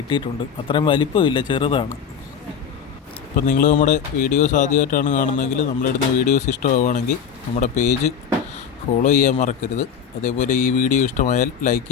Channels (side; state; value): right; quieter; 7.3 dB